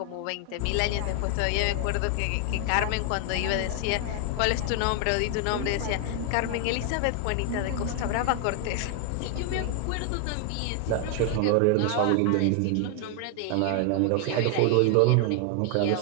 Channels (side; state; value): both; different; correlation 0.00